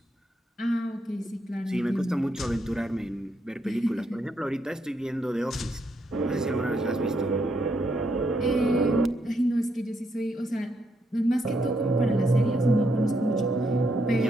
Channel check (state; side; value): normal; both; correlation 0.77